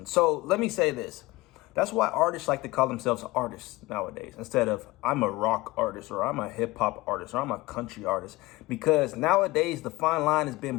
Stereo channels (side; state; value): right; quieter; 20.6 dB